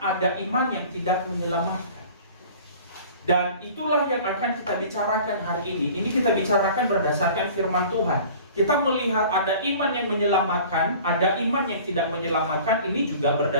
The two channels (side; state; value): both; inverted; correlation -0.45